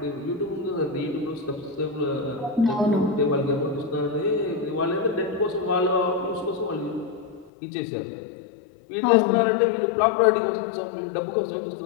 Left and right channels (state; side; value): drops out; right; at 7.5 s